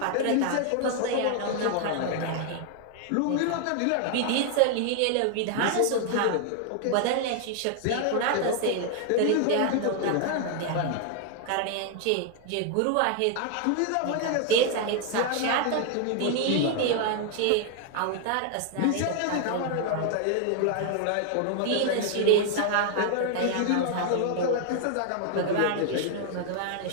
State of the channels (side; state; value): both; different; correlation 0.00